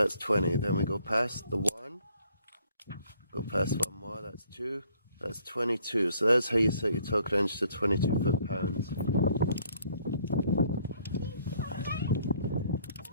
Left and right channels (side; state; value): both; inverted; correlation -0.62